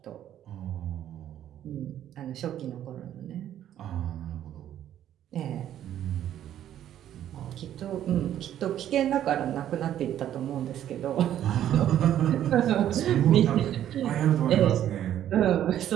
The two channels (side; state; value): left; quieter; 11.2 dB